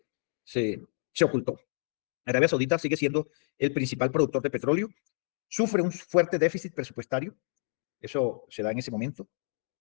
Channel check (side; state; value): right; silent; 58 dB below the other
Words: ocultó. Arabia Saudita sigue siendo el principal productor de petróleo, sufre un fuerte déficit presupuestario, eso se da en ese momento.